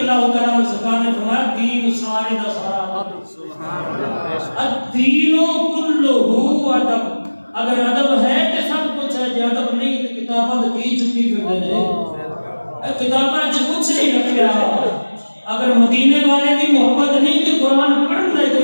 تعالیٰ عنہ سرکار نے فرمایا دین سارے دا سارا الدین کلہ ادب اگر ادب ہے تو سب کچھ ہے جے ادب نہیں تو کتابت کی چکی پھر دے کتاباں چ کچھ نہیں رکھیا اگر مدینے والے دی محبت نہیں تو قرآن پڑھنے کا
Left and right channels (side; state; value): both; inverted; correlation -1.00